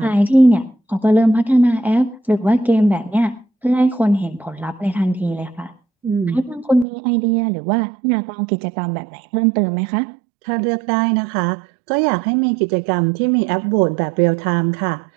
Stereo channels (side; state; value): left; drops out; at 6.9 s